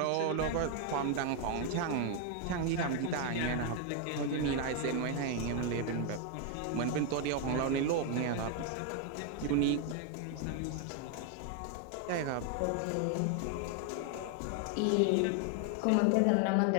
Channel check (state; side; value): different; both; correlation 0.01